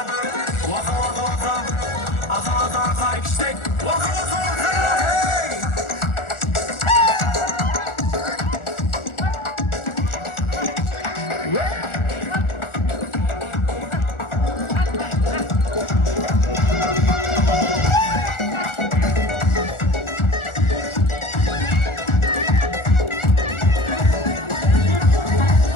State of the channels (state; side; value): late; right; 1.4 ms